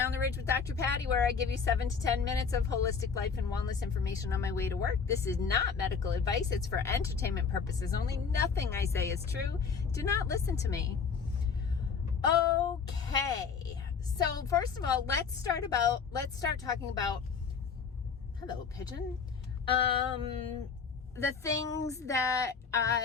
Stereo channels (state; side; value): quieter; right; 5.9 dB